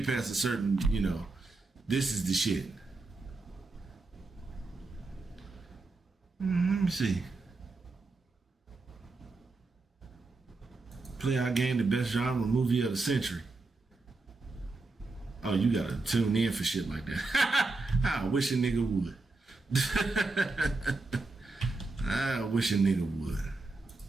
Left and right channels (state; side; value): quieter; left; 3.5 dB